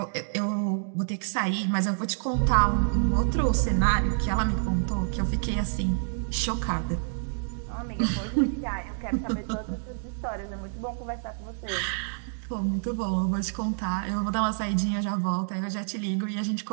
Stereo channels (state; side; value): silent; left; digital silence